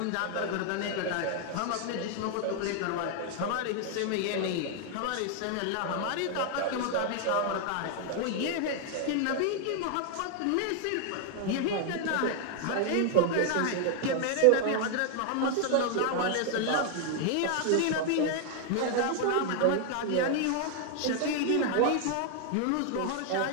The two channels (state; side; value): different; both; correlation 0.00